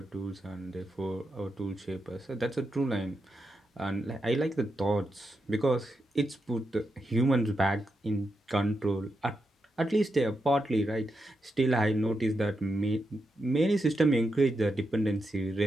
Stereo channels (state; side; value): normal; both; correlation 0.86